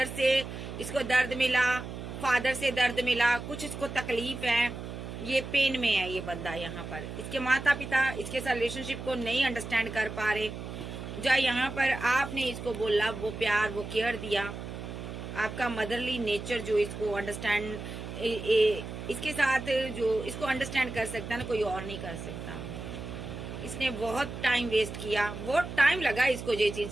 से इसको दर्द मिला, फादर से दर्द मिला, कुछ इसको तकलीफ है, ये पेन में है ये बंदा। यहाँ पर इसके माता पिता इसके साथ रिलेशनशिप को नहीं अंडरस्टैंड कर पा रहे। जो यहाँ पर आपने इसको बोला, वो प्यार, वो केयर दिया, आपका मदरली नेचर जो इसको अंडरस्टैंड, इसके साथ जो इसको अंडरस्टैंड कर सकता है ना, कोई और नहीं कर सकता। इसने बहुत टाइम वेस्ट किया, बहुत टाइम लगा इसको ये चीज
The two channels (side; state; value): right; noise; hum, 9 dB below the sound